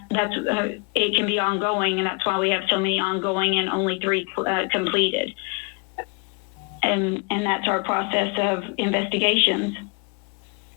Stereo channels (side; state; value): right; quieter; 35.5 dB